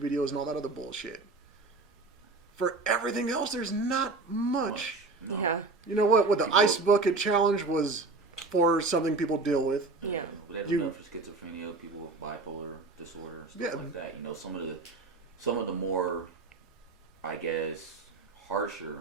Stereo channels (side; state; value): left; quieter; 3.7 dB